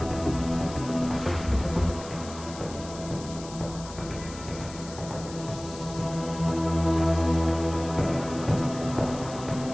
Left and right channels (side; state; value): left; noise; hiss, 15 dB below the sound